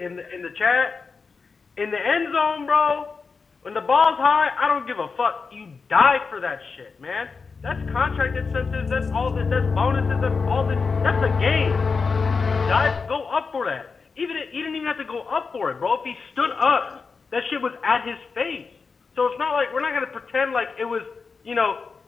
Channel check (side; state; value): right; quieter; 4.9 dB